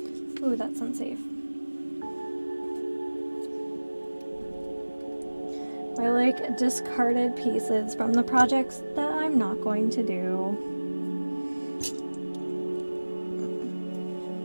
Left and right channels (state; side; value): inverted; both; correlation -1.00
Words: Ooh, that's unsafe. I like discarded pieces from the projects that I'm not going to do.